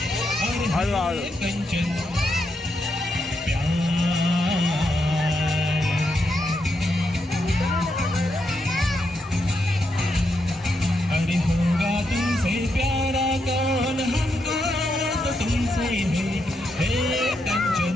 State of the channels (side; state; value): both; normal; correlation 0.82